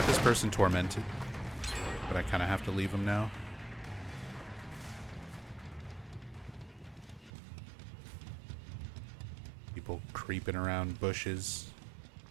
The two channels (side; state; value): left; drops out; at 7.3 s